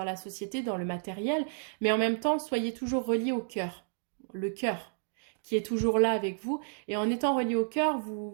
la société, dans le matériel, mais en même temps, soyez toujours reliés au cœur. Le cœur qui est toujours là avec vous. Et en étant relié au cœur,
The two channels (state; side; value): silent; left; digital silence